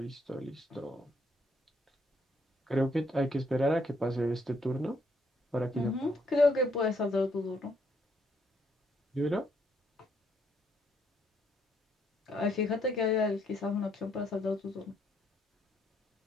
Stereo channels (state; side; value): normal; both; correlation 0.72